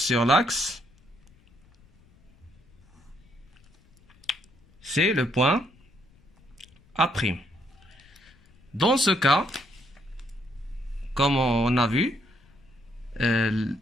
l'axe, c'est le point A'. Dans ce cas, comme on a vu,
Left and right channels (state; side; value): noise; left; rumble, 29 dB below the sound